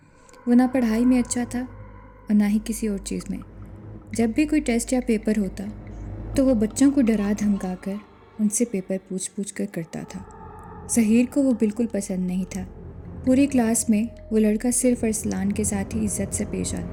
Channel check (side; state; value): both; identical; correlation 1.00